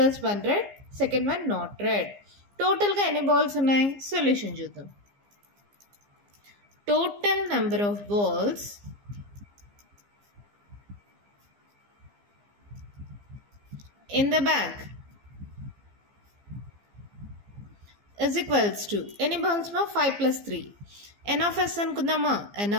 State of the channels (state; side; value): late; left; 15 ms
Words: one red, second one not red? Total గా ఎన్ని balls ఉన్నాయి? Solution చూద్దాం. Total number of balls in the bag is equals to any balls ma 5 plus 3 n of s anukundama n